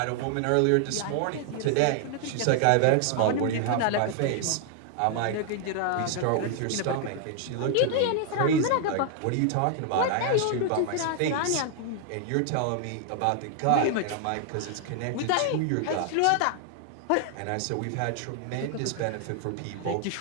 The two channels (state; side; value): different; both; correlation 0.00